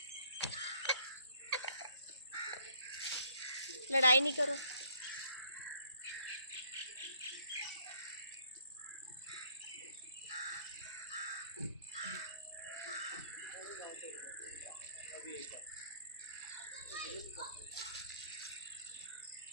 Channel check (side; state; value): both; inverted; correlation -0.62